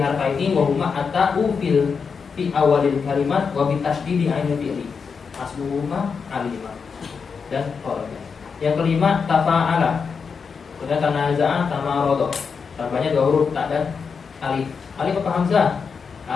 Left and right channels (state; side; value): quieter; right; 5.7 dB